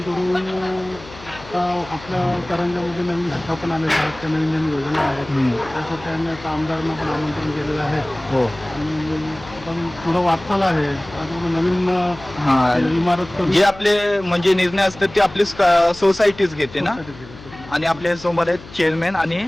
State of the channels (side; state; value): left; noise; hum, 18 dB below the sound